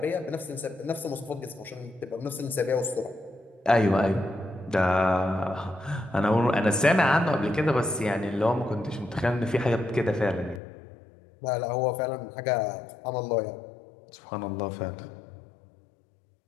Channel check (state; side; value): drops out; right; at 10.6 s